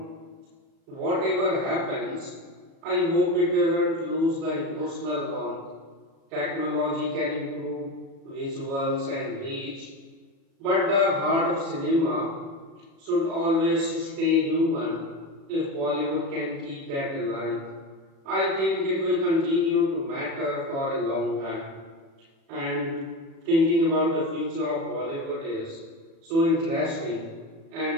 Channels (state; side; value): late; left; 36 ms